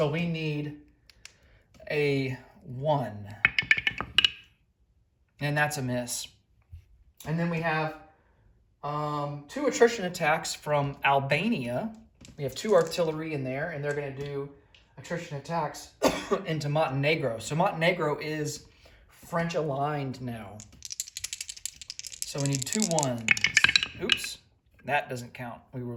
we need a 1. And that's a miss. And then we have 2 attrition attacks from Albania. We have 2 artillery in there, and they're going to do attrition attacks into Montenegro. So Montenegro is French aligned now. So we need 2 ones. Oops, that doesn't count. We will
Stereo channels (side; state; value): both; identical; correlation 1.00